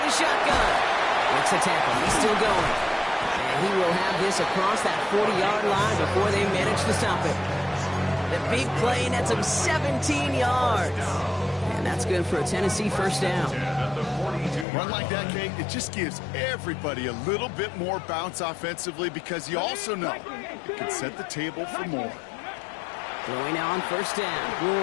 the shotgun. Makes a tackle. He's still going. And he will have this across that 40-yard line before they manage to stop it. The big play nets him 17 yards. And that's good for a Tennessee first down. Run like that, Kate, it just gives everybody a little bit more bounce offensively because you also know it can set the table for more. Throwing now on 1st down.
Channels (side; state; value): right; drops out; at 14.7 s